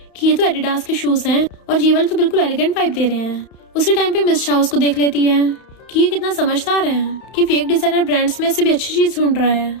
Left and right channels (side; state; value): right; late; 32 ms